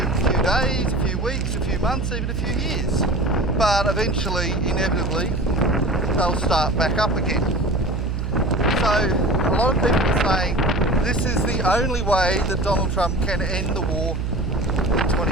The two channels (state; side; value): noise; right; hum, 2 dB below the sound